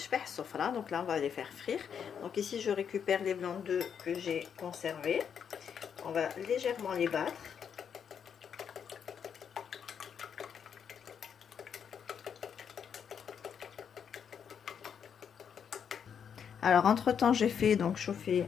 sofra. Donc là on va les faire frire. Donc ici je récupère les blancs d'œufs que j'ai conservés. On va légèrement les battre. Alors entre temps j'ai fait donc chauffer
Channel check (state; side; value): quieter; right; 7.6 dB